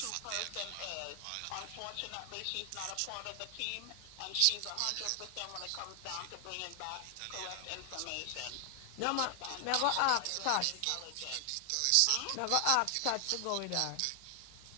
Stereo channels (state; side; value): different; both; correlation 0.00